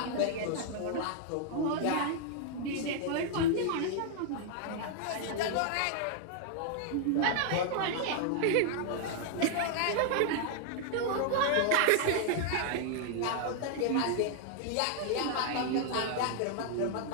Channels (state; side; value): different; both; correlation 0.00